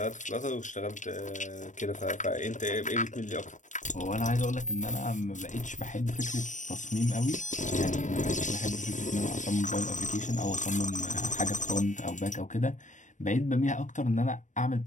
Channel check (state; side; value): late; right; 0.36 ms